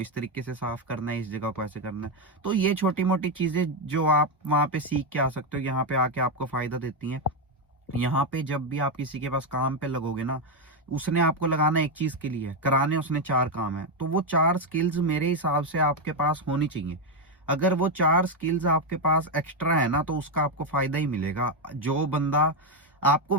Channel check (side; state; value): both; normal; correlation 0.05